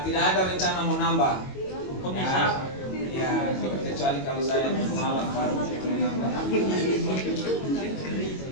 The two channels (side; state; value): right; late; 22 ms